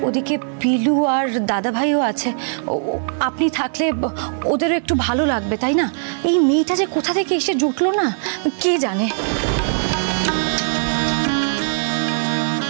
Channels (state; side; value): silent; left; digital silence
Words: ওদিকে পিলু আর দাদা ভাইও আছে, আপনি থাকলে ওদেরও একটু ভালো লাগবে, তাই না? এই মেয়েটা যে কোথা থেকে এসে জুটলো না কে জানে।